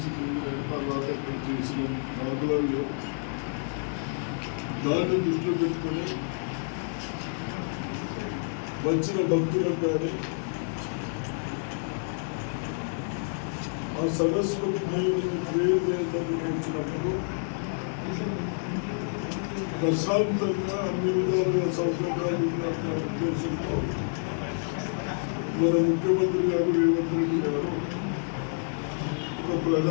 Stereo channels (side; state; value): right; silent; 59 dB below the other